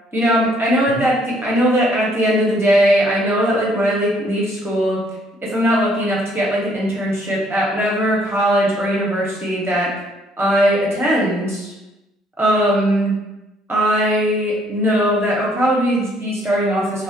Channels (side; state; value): both; normal; correlation 0.65